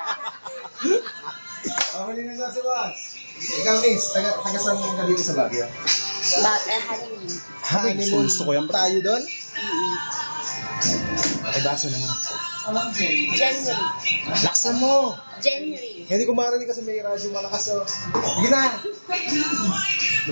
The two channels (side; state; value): both; inverted; correlation -1.00